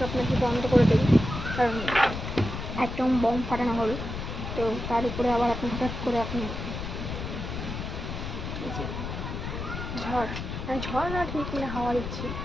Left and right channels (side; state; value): left; noise; rumble, 6 dB below the sound